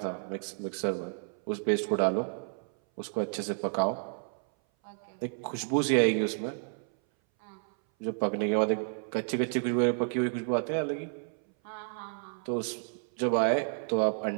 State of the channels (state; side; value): silent; left; 57 dB below the other